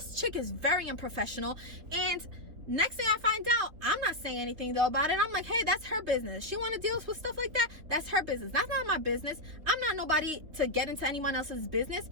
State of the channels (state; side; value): late; left; 3.5 ms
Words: chick is very unprofessional. And next thing I find out, I'm not saying anything though about it. I'm like, hey, that's her business. She want to deal with stuff like that, that's her business. That's not my business. I'm not nobody to get into anyone else's business.